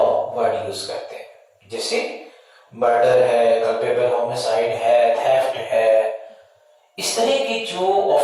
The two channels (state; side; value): identical; both; correlation 1.00